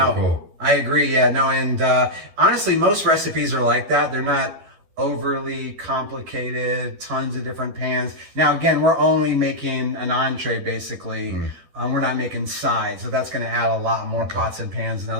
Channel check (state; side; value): late; left; 12 ms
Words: cool. I agree. Yeah, no, and honestly, most recipes are like that. They're not overly complicated, tons of different pans. Now, again, we're only making an entree, basically. We're not making sides, so that's going to add a lot more pots and pans and